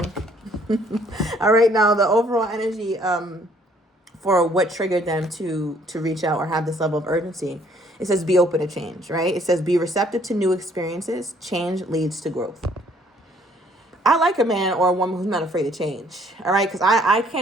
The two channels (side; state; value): both; normal; correlation 0.63